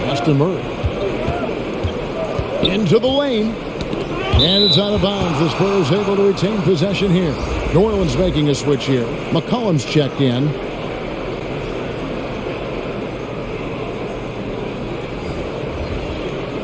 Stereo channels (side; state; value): both; identical; correlation 1.00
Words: Pass to Murray. Into the lane. And it's out of bounds. The Spurs able to retain possession here. New Orleans making a switch here. McCollum's checked in.